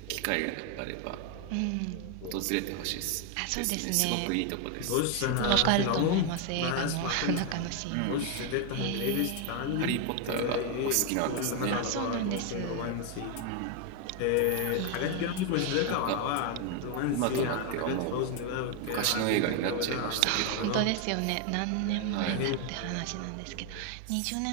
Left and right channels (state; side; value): different; both; correlation 0.01